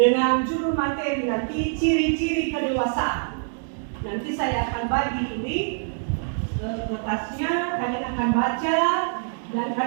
judul materi nanti ciri-ciri kedewasaan. Nanti saya akan bagi ini kertasnya, kalian akan baca dan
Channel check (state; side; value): silent; left; digital silence